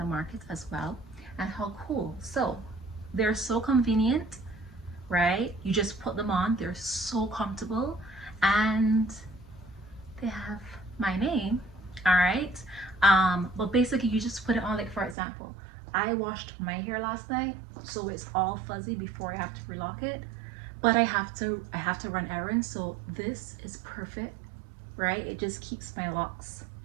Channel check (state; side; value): drops out; left; at 15.2 s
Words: markets as well. And how cool. So they're so convenient, right? You just put them on, they're so comfortable, and they have my name. All right. But basically you just put it on, like for example, I washed my hair last night, so it's all fuzzy before I have to relock it, but I have to run errands, so this is perfect, right? It just keeps my locks.